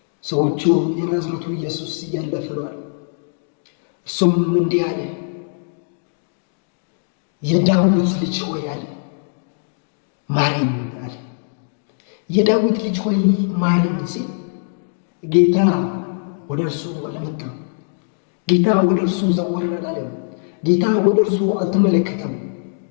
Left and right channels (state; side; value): silent; right; digital silence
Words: ሰዎቹ የናዝሬቱ ኢየሱስ እያለፈ ነው አሉ። እሱም እንዲህ አለ፣ የዳዊት ልጅ ሆይ አለ ማረኝ አለ። የዳዊት ልጅ ሆይ ማረኝ ሲል ጌታ ወደ እርሱ አልመጣም። ጌታ ወደ እርሱ ዘወር አላለም። ጌታ ወደ እርሱ አልተመለከተም፣